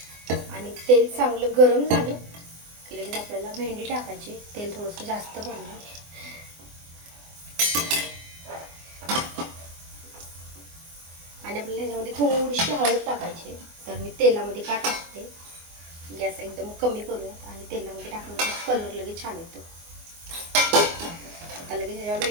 आणि तेल चांगलं गरम झालं की लगेच आपल्याला भेंडी टाकायची. तेल थोडंसं जास्त पडलं. आणि आपल्याला ह्याच्यामध्ये थोडीशी हळद टाकायची. तर मी तेलामध्ये का टाकते, गॅस एकदम कमी करूयात आणि तेलामध्ये टाकल्यावर कलर लगेच छान येतो. आता लगेच ह्याच्यावर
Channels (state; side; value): late; left; 24 ms